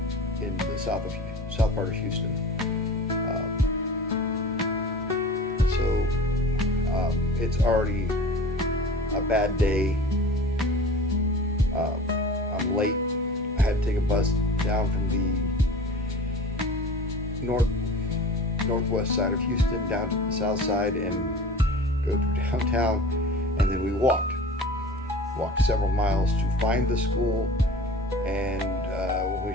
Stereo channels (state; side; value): normal; both; correlation 0.38